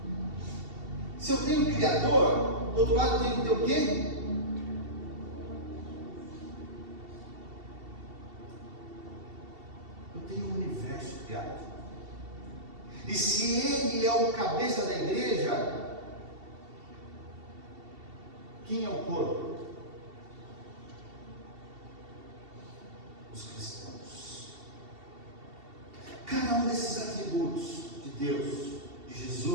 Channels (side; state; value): left; late; 2.7 ms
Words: Se eu tenho um Criador, do outro lado eu tenho que ter o quê? Eu tenho um universo criado. E se Ele é o cabeça da igreja, quem é o corpo? Os cristãos. Cada um desses atributos de Deus, de